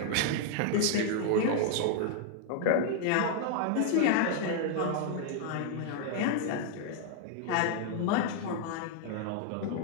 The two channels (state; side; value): different; both; correlation 0.00